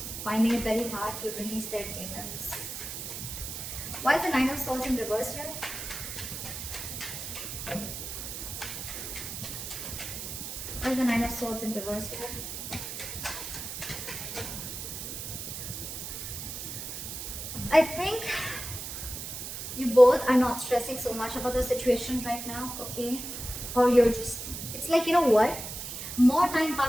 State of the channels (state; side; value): noise; right; hiss, 7 dB below the sound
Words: finding it very hard to release their demons. Why is the Nine of Swords in reverse here? Why is the Nine of Swords in reverse here? I think you both are not stressing so much about the situation right now, okay? Or you're just, it's like, you know what? More time